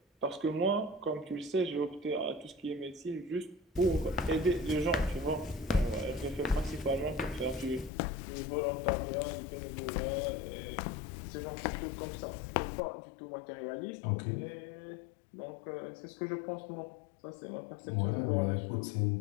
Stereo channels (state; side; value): drops out; right; at 7.9 s